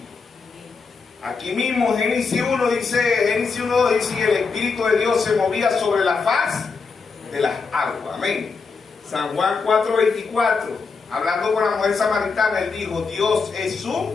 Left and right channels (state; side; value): quieter; right; 4.8 dB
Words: Aquí mismo Génesis 1:2 dice, y el Espíritu de Dios se movía sobre la faz de las aguas. Amén. San Juan 4:24, hablando con la mujer samaritana, él dijo, Dios es su